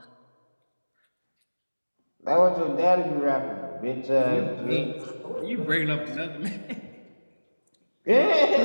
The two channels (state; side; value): inverted; both; correlation -1.00